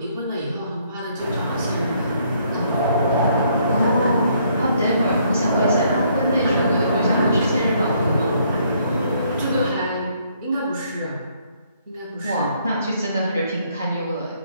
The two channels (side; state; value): both; inverted; correlation -0.67